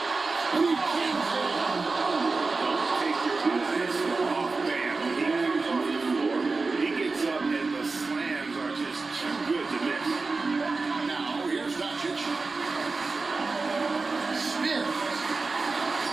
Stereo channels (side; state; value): left; quieter; 3.9 dB